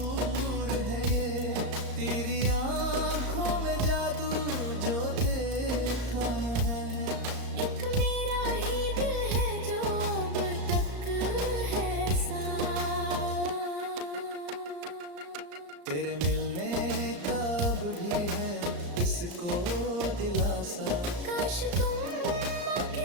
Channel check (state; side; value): late; left; 34 ms